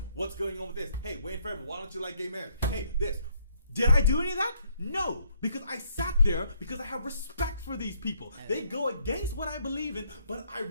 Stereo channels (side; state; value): both; inverted; correlation -0.69